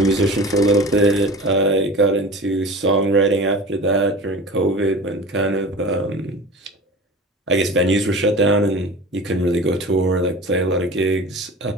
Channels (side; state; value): both; normal; correlation 0.37